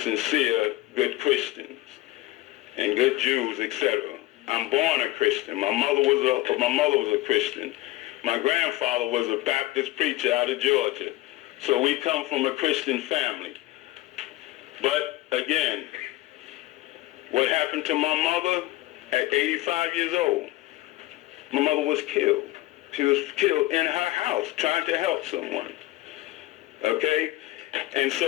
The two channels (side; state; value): right; quieter; 17.6 dB